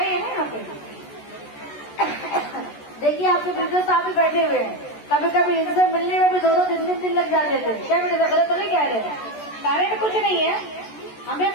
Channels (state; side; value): late; right; 14 ms